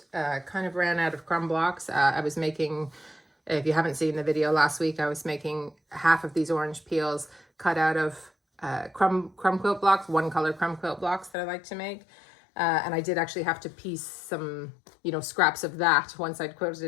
kind of ran out of crumb blocks. I was making, if you haven't seen the video last week, I was making half of these orange peels cut out of crumb quilt blocks, one color crumb quilt blocks that I like to make. And I did actually have to piece some, scraps of that once I'd quilted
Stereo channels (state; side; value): drops out; right; at 11.3 s